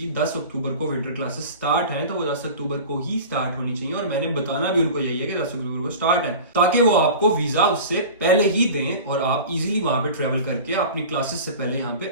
10 अक्टूबर को विंटर क्लासेस स्टार्ट हैं, तो वो 10 अक्टूबर को ही स्टार्ट होनी चाहिए और मैंने बताना भी उनको यही है कि 10 अक्टूबर को स्टार्ट है, ताकि वो आपको वीजा उससे पहले ही दें और आप इजीली वहां पे ट्रेवल करके अपनी क्लासेस से पहले यहाँ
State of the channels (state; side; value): inverted; both; correlation -0.36